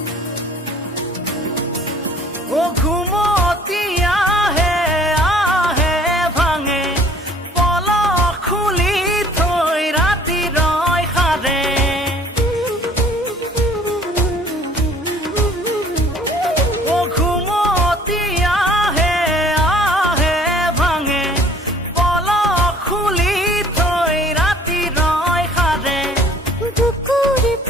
ও ঘুমতি আহে আহে ভাঙে পলক খুলি থৈ ৰাতি ৰয় সাৰে ও ঘুমতি আহে আহে ভাঙে পলক খুলি থৈ ৰাতি ৰয় সাৰে বুকুৰ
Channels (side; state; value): both; normal; correlation 0.53